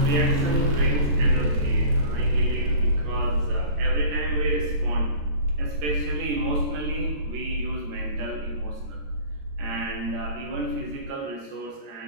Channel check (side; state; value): left; late; 14 ms